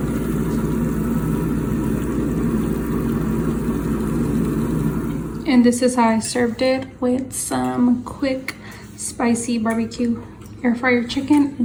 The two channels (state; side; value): identical; both; correlation 1.00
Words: And this is how I served it, with some quick spicy barbecue air fryer chicken